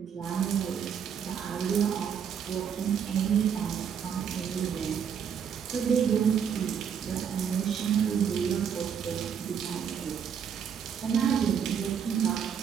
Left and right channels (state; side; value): quieter; left; 7.7 dB